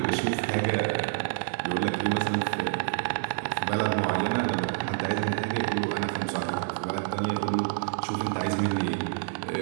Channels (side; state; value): left; silent; 59 dB below the other